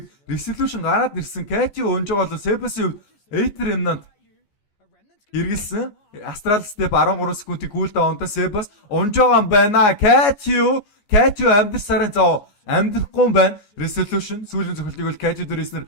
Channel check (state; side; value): late; right; 14 ms